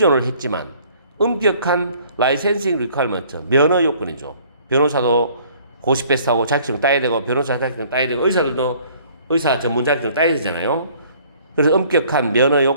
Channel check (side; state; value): both; inverted; correlation -0.56